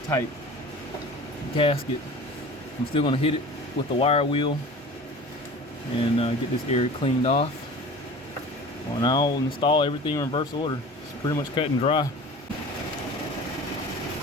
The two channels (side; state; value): both; normal; correlation 0.39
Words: type gasket. I'm still going to hit it with the wire wheel and get this area cleaned off. Well, and I'll install everything in reverse order. It's pretty much cut and dry.